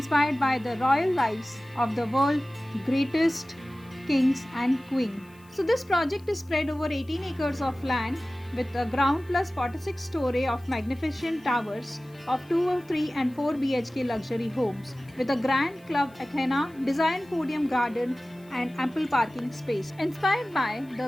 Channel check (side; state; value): left; noise; hiss, 29 dB below the sound